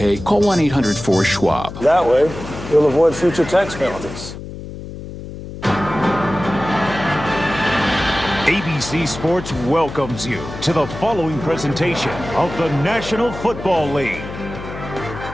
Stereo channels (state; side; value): noise; left; hum, 11 dB below the sound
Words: call 1-800-4-SCHWAB. That way, you'll avoid future tax penalties. ABC Sports welcomes you to the following presentation of the National Football League.